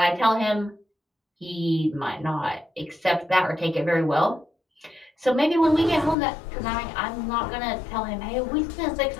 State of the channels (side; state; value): right; drops out; at 6.2 s